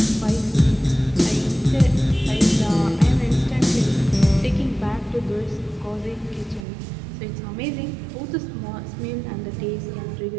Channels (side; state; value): left; drops out; at 6.7 s